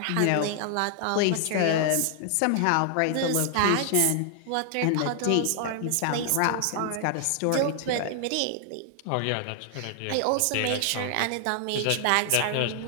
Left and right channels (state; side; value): different; both; correlation 0.00